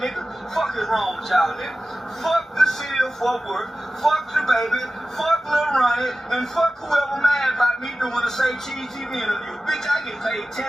nigga? Fuck is wrong with y'all, nigga? Fuck the city of Fort Worth. Fuck the baby. Fuck Lil Ronnie. And fuck whoever mad about me doing a Say Cheese TV interview. Bitch, I get paid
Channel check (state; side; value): normal; both; correlation 0.95